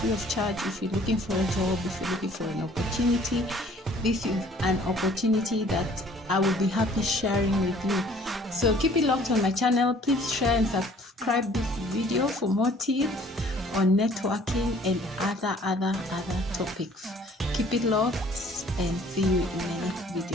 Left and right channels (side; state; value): both; normal; correlation 0.55